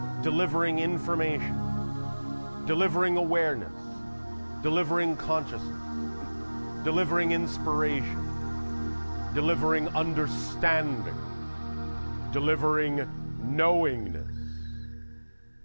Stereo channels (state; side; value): inverted; both; correlation -1.00